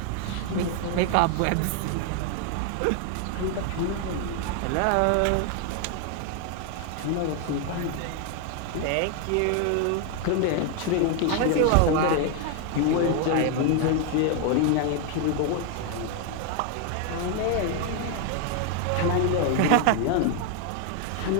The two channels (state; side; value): different; both; correlation 0.00